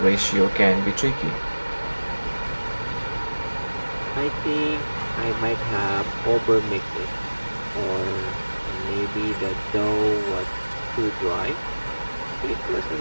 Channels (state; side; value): inverted; both; correlation -1.00